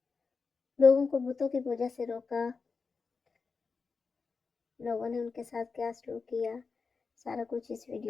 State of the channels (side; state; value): right; quieter; 4.8 dB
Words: لوگوں کو بتوں کی پوجا سے روکا، لوگوں نے ان کے ساتھ کیا سلوک کیا، سارا کچھ اس